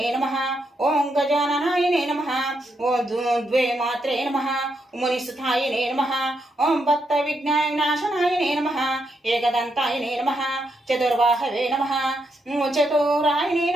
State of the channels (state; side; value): normal; both; correlation 0.80